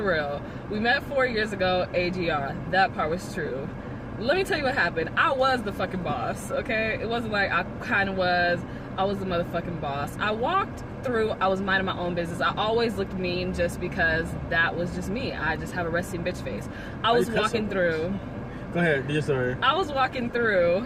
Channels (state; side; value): identical; both; correlation 1.00